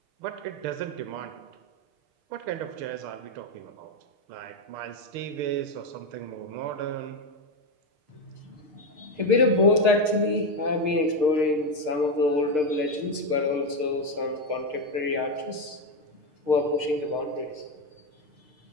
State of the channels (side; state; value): left; late; 6.6 ms